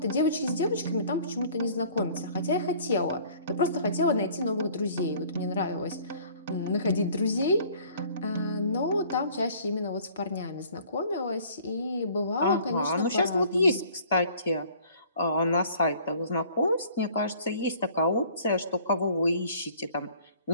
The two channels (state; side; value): inverted; both; correlation -0.53